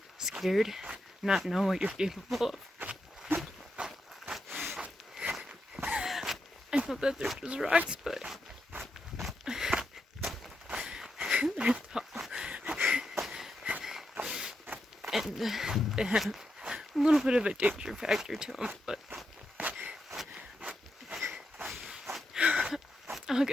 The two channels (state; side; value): normal; both; correlation 0.85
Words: scared, not know what you're capable of. I know that they're just rocks, but they're tall. And they have a little bit of a danger factor to them, but I'll